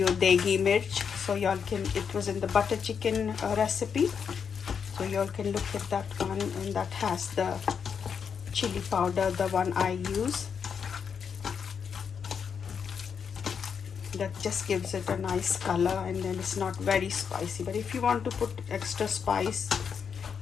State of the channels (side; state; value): right; quieter; 6.8 dB